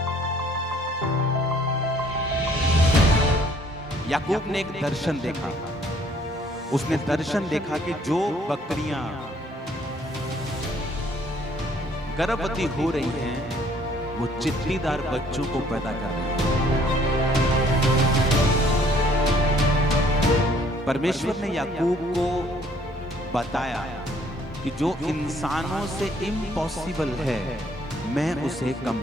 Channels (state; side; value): normal; both; correlation 0.61